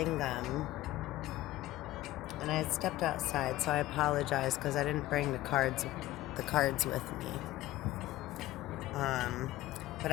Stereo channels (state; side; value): quieter; right; 16.1 dB